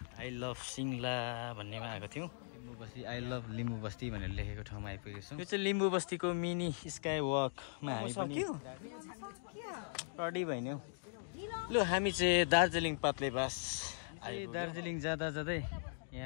आई लभ सिङ्ला भन्नेमा आएको थियौँ। लिम्बू बस्ती आई लभ लिम्बू बस्ती भनेर लेखेको ठाउँमा आइपुगेको छौँ। यो चाहिँ लिम्बू बस्तीको मिनी स्काई वकमा हामी पनि रेडी भइन्यौ। लु हामी चाहिँ दार्जिलिङ पात्लेबास दार्जिलिङ जाँदा जाँदै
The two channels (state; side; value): silent; right; digital silence